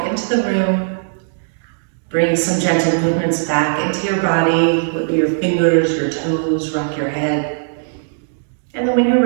into the room. Bring some gentle movements back into your body. Wiggle your fingers, your toes, rock your head. And then when you're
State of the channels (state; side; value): silent; left; digital silence